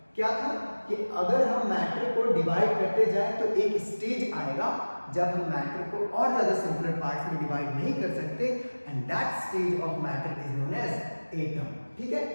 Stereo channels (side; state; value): both; inverted; correlation -1.00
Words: क्या था कि अगर हम मैटर को डिवाइड करते जाए तो एक स्टेज आएगा जब हम मैटर को और ज्यादा सिंपलर पार्ट्स में डिवाइड नहीं कर सकते and that stage of matter is known as atom. ठीक है,